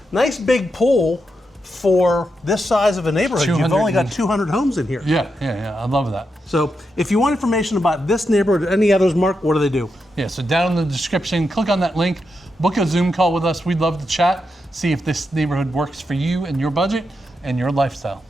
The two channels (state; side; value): normal; both; correlation 0.85